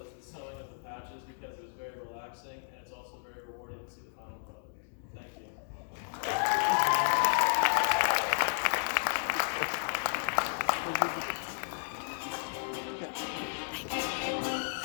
the sewing of the patches because it was very relaxing and it's also very rewarding to see the final product. Thank you.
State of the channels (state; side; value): silent; right; digital silence